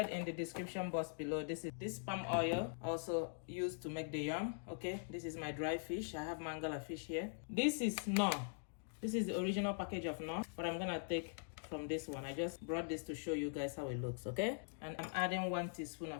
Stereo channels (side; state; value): right; silent; digital silence